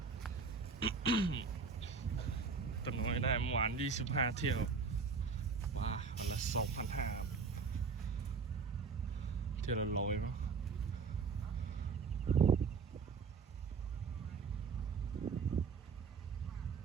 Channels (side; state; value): left; quieter; 5.2 dB